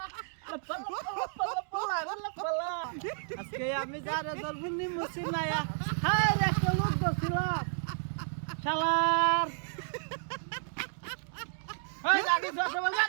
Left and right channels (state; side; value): silent; left; digital silence